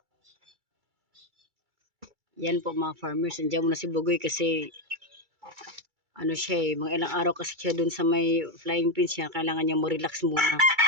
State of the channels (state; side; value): late; left; 2.3 ms